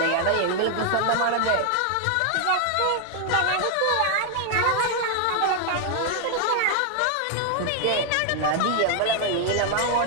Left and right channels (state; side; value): different; both; correlation 0.00